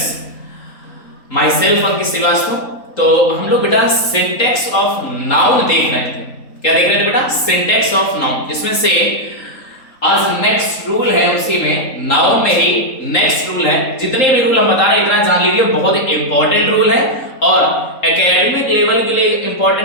my self Ankit Srivastava. तो हम लोग बेटा सिंटेक्स ऑफ नाउन देख रहे थे। क्या देख रहे थे बेटा? सिंटेक्स ऑफ नाउन, जिसमें से आज नेक्स्ट रूल है, उसी में नाउन में ही नेक्स्ट रूल है। जितने भी रूल हम बता रहे हैं इतना जान लीजिए, बहुत इंपॉर्टेंट रूल है और एकेडमिक लेवल के लिए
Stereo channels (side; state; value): right; late; 3.8 ms